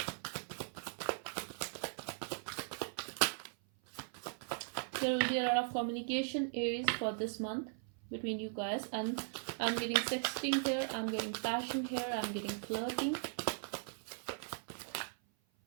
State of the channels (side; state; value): left; silent; 52 dB below the other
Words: There will be a lot of communication, Aries, for this month between you guys, and I'm getting sexting here, I'm getting passion here, I'm getting flirting.